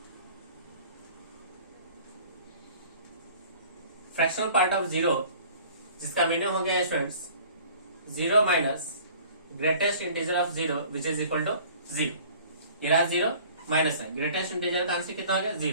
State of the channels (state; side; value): inverted; both; correlation -0.49